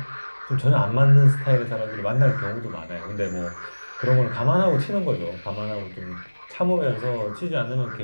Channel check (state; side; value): inverted; both; correlation -1.00